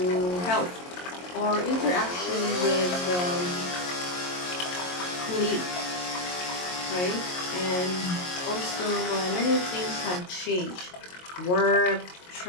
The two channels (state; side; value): late; right; 22 ms